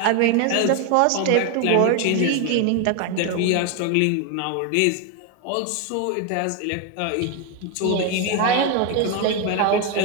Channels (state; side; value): different; both; correlation 0.01